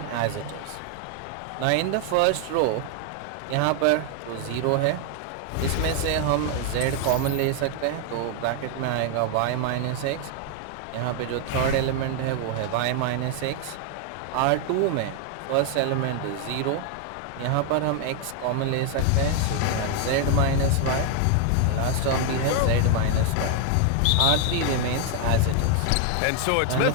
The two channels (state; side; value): different; both; correlation 0.00